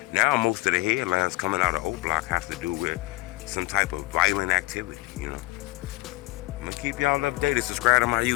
Now, most of the headlines coming out of Oblock have to do with some type of violent activity, I'm gonna keep y'all updated. Subscribe to my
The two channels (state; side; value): quieter; right; 21.7 dB